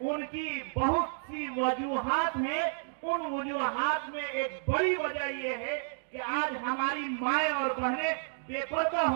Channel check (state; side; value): silent; left; digital silence